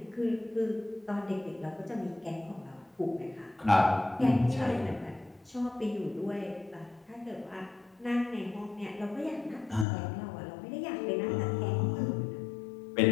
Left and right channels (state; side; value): drops out; right; at 9.9 s